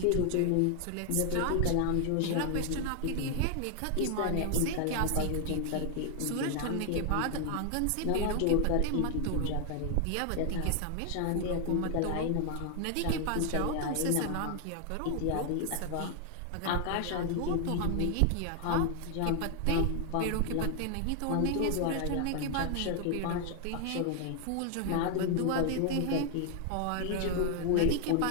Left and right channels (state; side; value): different; both; correlation 0.00